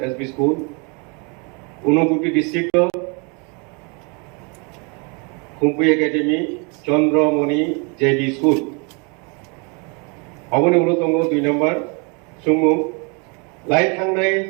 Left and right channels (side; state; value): left; quieter; 33.4 dB